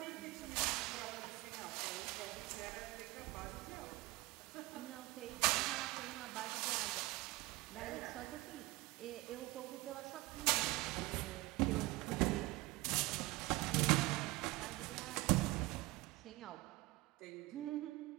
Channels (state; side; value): quieter; left; 20.7 dB